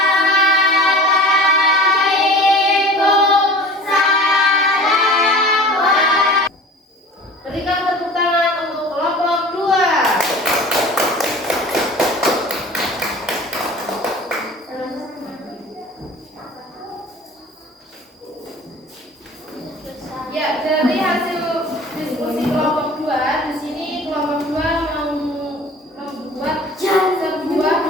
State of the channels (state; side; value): normal; both; correlation 0.41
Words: Berikan tepuk tangan untuk kelompok 2. Ya, dari hasil diskusi kelompok 2, di sini kelompok 2 membuat sebuah